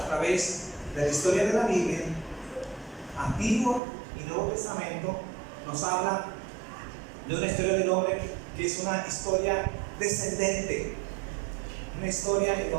través de la historia de la Biblia, Antiguo y Nuevo Testamento, nos habla de una historia del hombre que es una historia descendente, una historia en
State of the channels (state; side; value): drops out; left; at 3.8 s